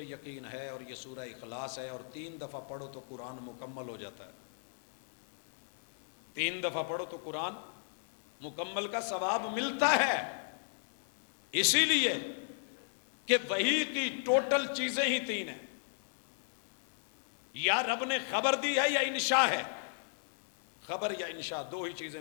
یقین ہے اور یہ سورہ اخلاص ہے اور 3 دفعہ پڑھو تو قرآن مکمل ہو جاتا ہے۔ 3 دفعہ پڑھو تو قرآن مکمل کا ثواب ملتا ہے، اسی لیے کہ وحی کی ٹوٹل چیزیں ہی 3 ہیں، یا رب نے خبر دی ہے یا انشاء ہے۔ خبر یا انشاء 2 ہی چیزیں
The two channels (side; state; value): right; silent; 54 dB below the other